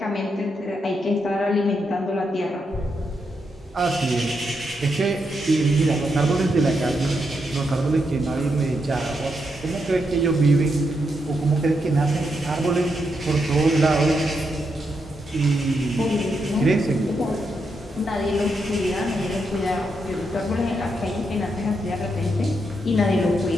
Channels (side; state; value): both; normal; correlation 0.82